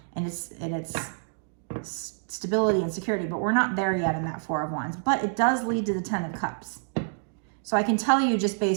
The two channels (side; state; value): left; silent; digital silence